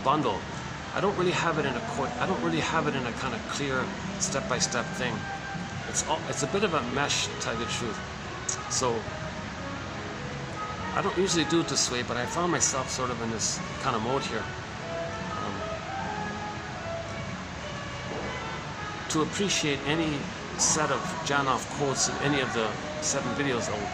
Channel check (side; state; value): both; identical; correlation 1.00